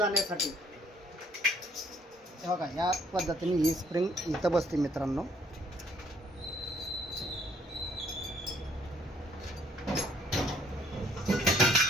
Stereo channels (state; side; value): normal; both; correlation 0.62